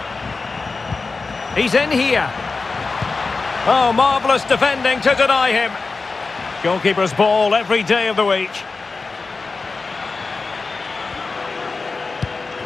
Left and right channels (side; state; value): right; quieter; 4.1 dB